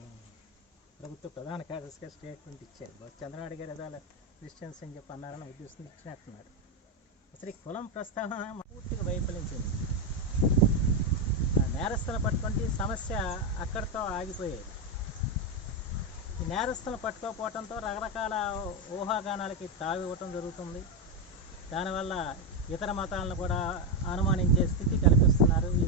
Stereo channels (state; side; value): normal; both; correlation 0.07